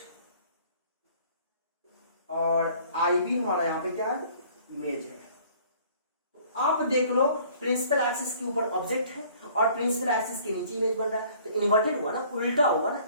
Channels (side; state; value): both; inverted; correlation -0.56